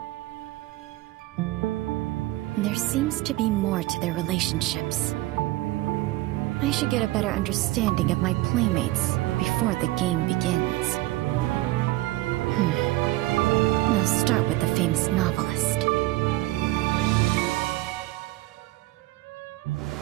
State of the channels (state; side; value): quieter; left; 17.9 dB